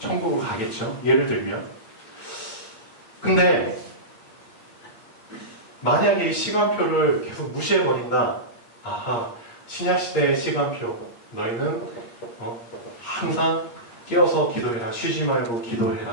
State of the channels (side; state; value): right; late; 8.5 ms